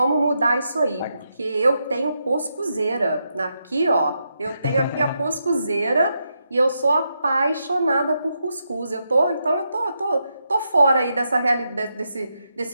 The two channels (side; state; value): both; inverted; correlation -0.83